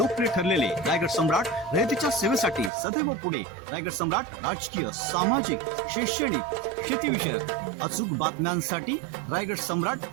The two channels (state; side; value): drops out; left; at 2.7 s